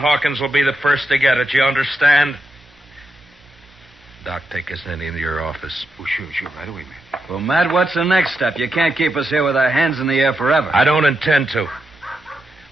will be the first to get it. You understand? Doc, take us into your office. Oh, sure, right away, man. Well, Matt, what's the next step? You can't keep us here with our hands in the air forever. I don't intend to.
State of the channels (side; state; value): both; normal; correlation 0.85